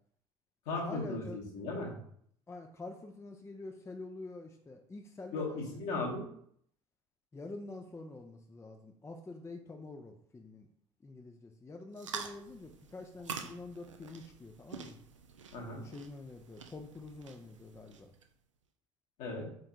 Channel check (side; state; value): both; normal; correlation 0.31